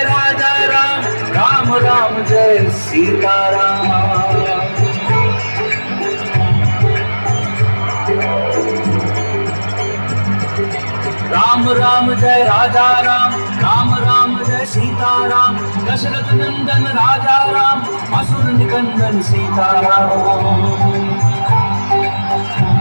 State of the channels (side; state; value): both; inverted; correlation -1.00